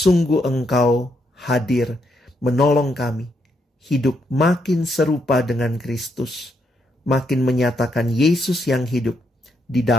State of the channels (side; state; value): both; normal; correlation 0.78